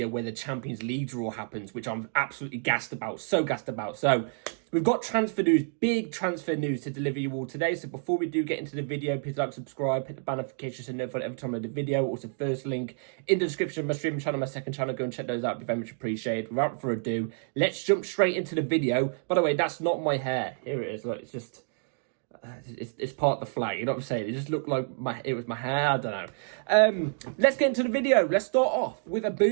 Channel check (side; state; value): left; silent; digital silence